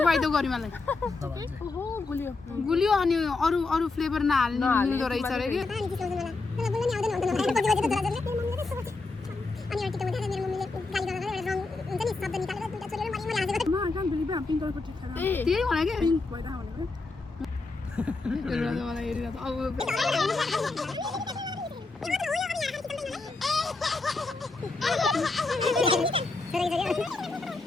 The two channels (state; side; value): quieter; right; 3.6 dB